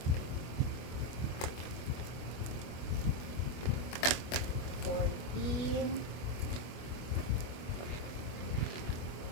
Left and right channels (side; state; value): right; late; 25 ms